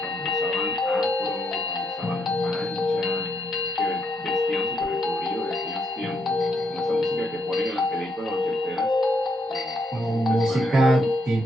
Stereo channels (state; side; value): normal; both; correlation 0.76